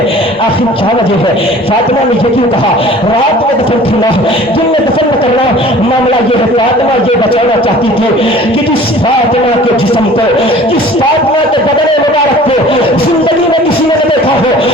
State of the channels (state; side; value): normal; both; correlation 0.47